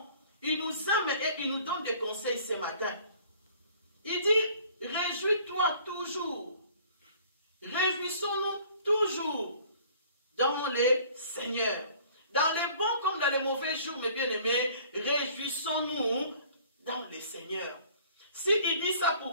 Il nous aime et il nous donne des conseils ce matin. Il dit, réjouis-toi toujours. Réjouissons-nous toujours dans les Seigneurs. Dans les bons comme dans les mauvais jours, mes bien-aimés, réjouissons-nous dans les Seigneurs. S'il dit ça,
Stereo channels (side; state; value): both; inverted; correlation -0.53